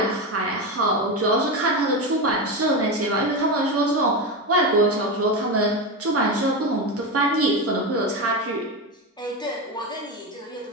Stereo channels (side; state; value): both; normal; correlation 0.16